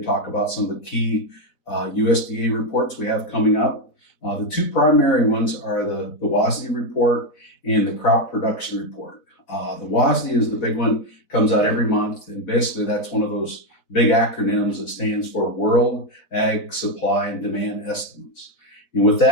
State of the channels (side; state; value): right; late; 4.0 ms